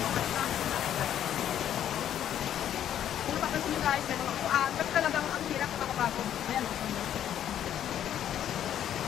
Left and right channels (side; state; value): right; quieter; 10.5 dB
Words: kung napapansin nyo guys, may mga kuan. Kasi talagang ang hirap na makapagod. Ayan.